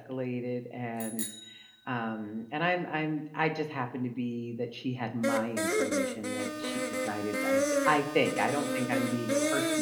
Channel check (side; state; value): both; identical; correlation 1.00